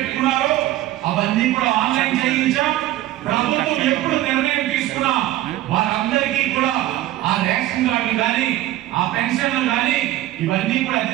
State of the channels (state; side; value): quieter; left; 14.9 dB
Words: అవన్నీ కూడా ఆన్లైన్ చేయించాం. ప్రభుత్వం ఎప్పుడు నిర్ణయం తీసుకున్నా వారందరికీ కూడా ఆ రేషన్ కార్డులు కానీ, ఆ పెన్షన్లు కానీ ఇవన్నీ కూడా అతి